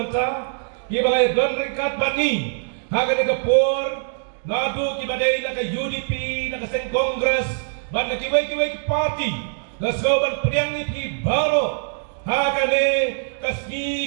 ki ba lai don ringkat bani Haga ni kapor, nadu kibadai na ka UDP, na ka Sen Congress, ban na kiway party, na soban priang ni pi baro. Haga ni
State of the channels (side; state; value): left; silent; digital silence